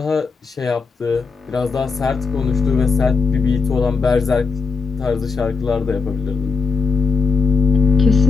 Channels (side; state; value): right; quieter; 4.9 dB